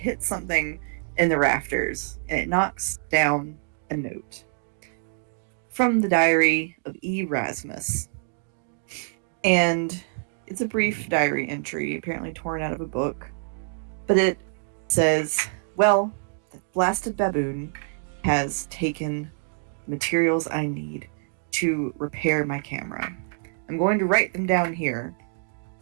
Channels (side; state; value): left; silent; digital silence